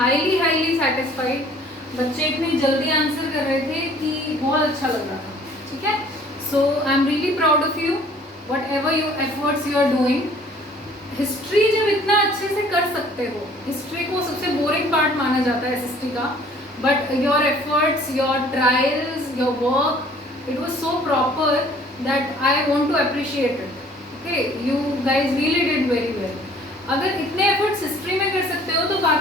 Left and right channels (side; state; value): both; normal; correlation 0.54